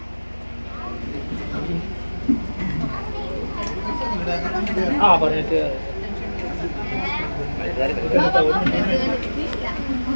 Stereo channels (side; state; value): both; inverted; correlation -1.00